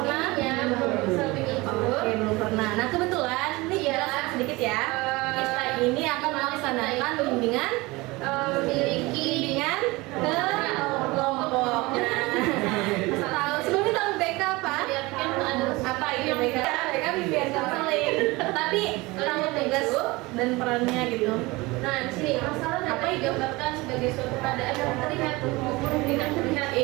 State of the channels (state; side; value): quieter; left; 22.5 dB